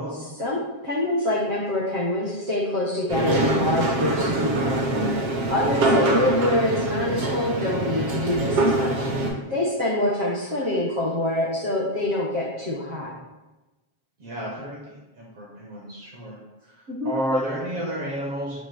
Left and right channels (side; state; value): left; late; 7.5 ms